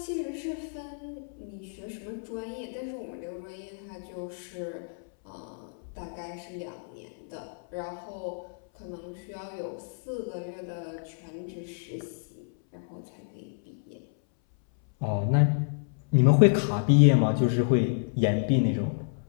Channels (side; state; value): right; silent; 58 dB below the other